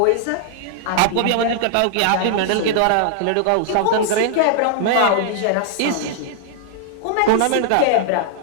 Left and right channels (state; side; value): different; both; correlation -0.01